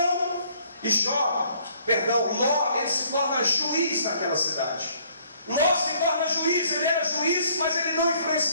E Ló, ele se torna juiz naquela cidade. Ló se torna juiz, ele era juiz, mas ele não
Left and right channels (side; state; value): both; inverted; correlation -0.62